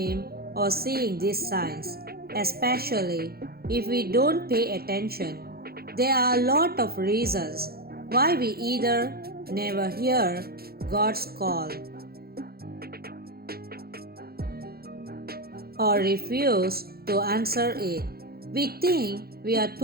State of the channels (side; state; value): left; late; 0.45 ms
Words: or seeing these signs, especially if we don't pay attention. There are a lot of reasons why we either never hear God's call or refuse to answer it. We think we are